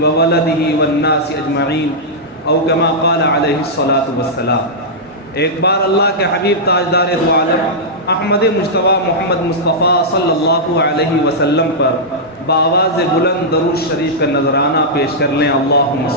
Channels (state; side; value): normal; both; correlation -0.10